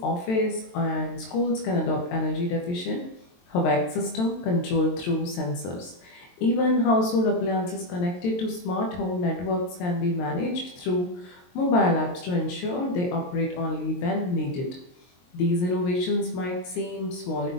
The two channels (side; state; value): right; late; 22 ms